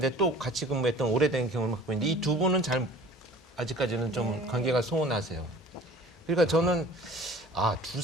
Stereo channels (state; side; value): normal; both; correlation 0.46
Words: 또 같이 근무했던 오래된 경험을 갖고 있는데 이 두 분은 아직까지는 좀 관계가 소원하세요. 그러니까 저는 두